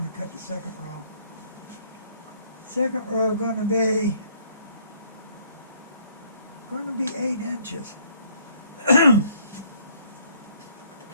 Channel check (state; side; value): inverted; both; correlation -0.62